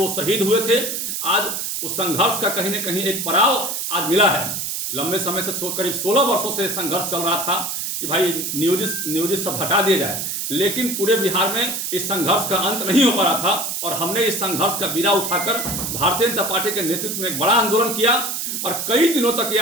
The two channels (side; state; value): right; noise; hiss, 3 dB below the sound